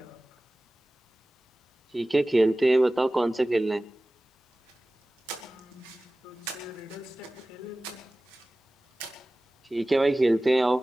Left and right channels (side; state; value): both; normal; correlation 0.97